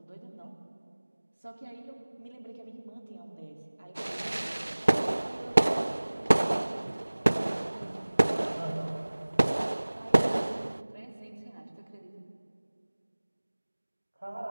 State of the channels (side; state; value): both; inverted; correlation -1.00